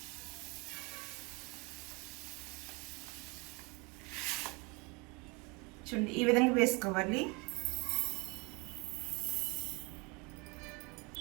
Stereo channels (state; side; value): quieter; left; 28.5 dB